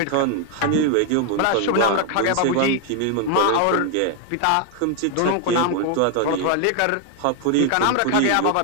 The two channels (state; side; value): different; both; correlation 0.01